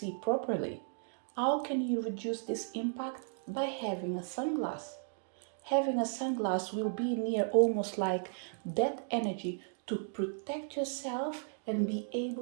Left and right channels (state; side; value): silent; left; digital silence